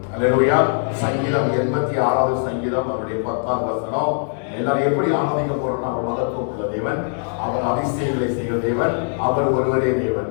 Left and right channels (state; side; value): silent; right; 65 dB below the other